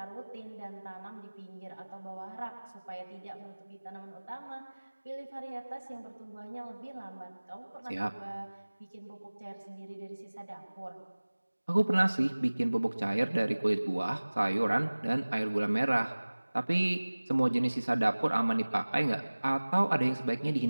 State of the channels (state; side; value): inverted; both; correlation -1.00